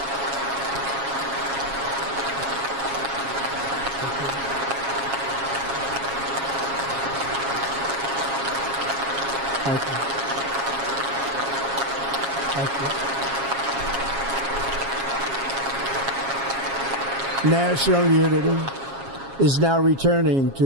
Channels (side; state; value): left; late; 7.3 ms